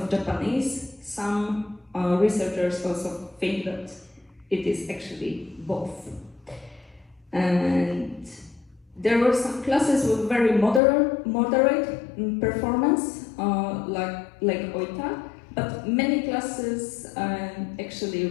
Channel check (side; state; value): right; drops out; at 10.8 s